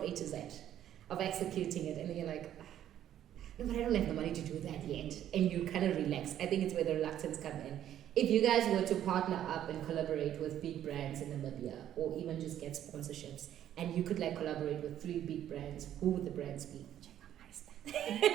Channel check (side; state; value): left; quieter; 11.2 dB